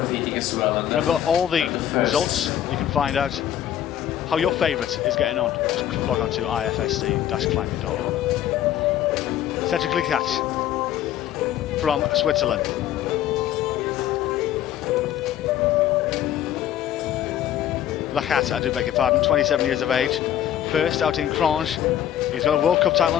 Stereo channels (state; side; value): quieter; right; 11.2 dB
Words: as well. And Remember, all the results, you can find out how your favourite is getting on. Just log on to ifsc-climbing.org. Cedric Lechat from Switzerland. Lechat, I do beg your pardon, 27 years of age. First out in Crange. He's got a World Cup title